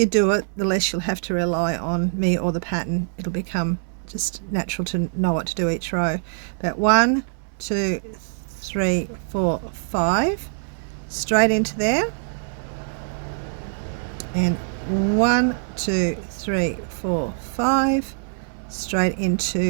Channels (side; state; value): left; silent; digital silence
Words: do it, the less you'll have to rely on me or the pattern. It'll become just natural to know what to do each row. But 1, 2, 3, 4, 5, straight into there, and 1, 2, 3, 4, 5, straight